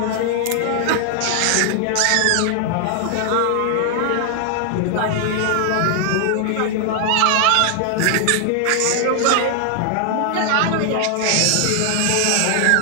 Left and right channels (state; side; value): different; both; correlation 0.00